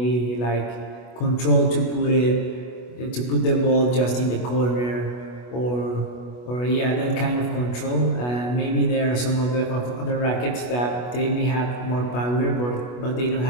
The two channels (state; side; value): late; right; 24 ms